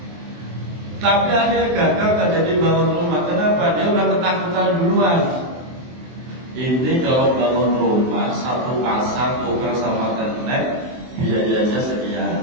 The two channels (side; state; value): left; late; 23 ms